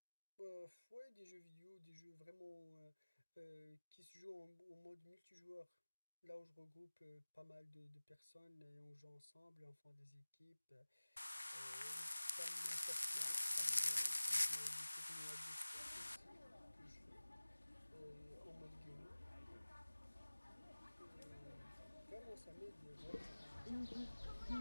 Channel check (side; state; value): both; inverted; correlation -1.00